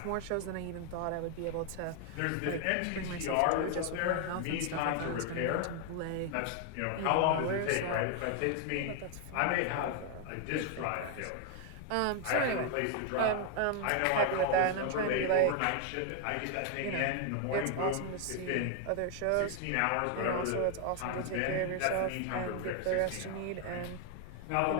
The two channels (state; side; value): different; both; correlation 0.00